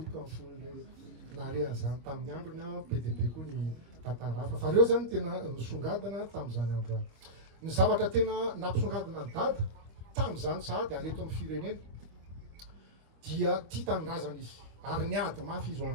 amin'ny fon'le narehan'izany tamin'ny androny be dia be koa ny tantara hafa. Fa reo zany tena nisongadina tamin'izany andro any. Ny zavatra tena nampisongadina ny dada tamin'izany sahady ary eto amin'ny firenena dia tia tanindrazana izy ary niady mafy izy ho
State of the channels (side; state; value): left; late; 25 ms